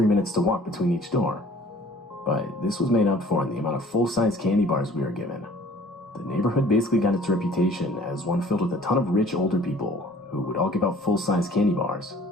minutes to walk between each door. But this was made up for in the amount of full-size candy bars we were given. The neighborhood basically got its reputation as one filled with a ton of rich older people who would all give out full-size candy bars.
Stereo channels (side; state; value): both; normal; correlation 0.52